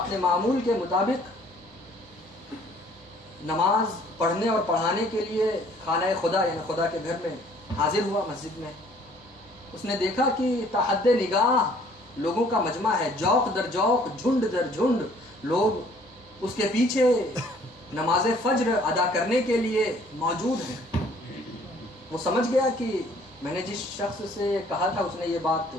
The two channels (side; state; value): both; normal; correlation 0.58